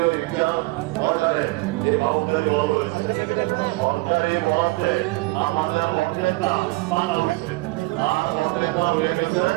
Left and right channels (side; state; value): left; quieter; 23.1 dB